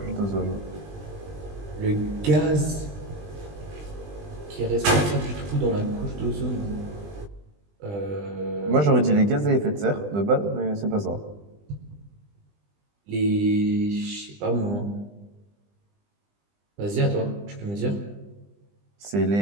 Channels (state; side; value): late; left; 20 ms